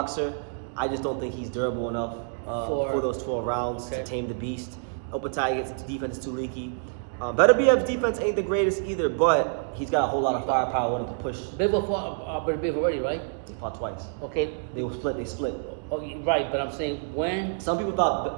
I just don't think he's durable enough for those 12 rounds to tame the beast. Opetaia's defense is too leaky. Beterbiev's defense ain't the greatest either, but he's got a whole lot of firepower with him to push. Bivol fought Beterbiev already, right? They fought twice. Okay. They split. Oh, right, but I'm saying when. Some people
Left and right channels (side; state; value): left; silent; digital silence